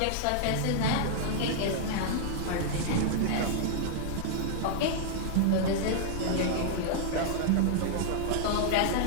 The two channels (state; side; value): different; both; correlation -0.01